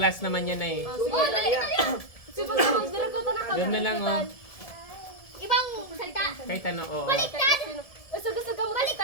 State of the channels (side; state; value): right; late; 1.7 ms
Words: naman yan na eh. Sige, pag-dira ko na Doon na lang, oh. Ibang salita. Kahit ano, oo. Baliktad. Gusto mo kasi